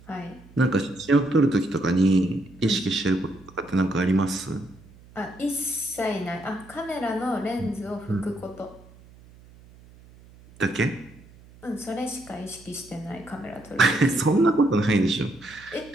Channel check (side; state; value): right; noise; hum, 24 dB below the sound